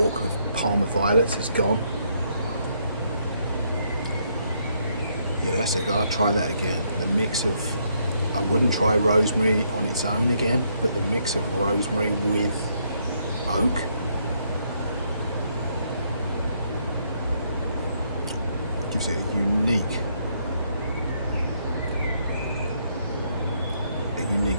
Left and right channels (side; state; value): both; inverted; correlation -0.73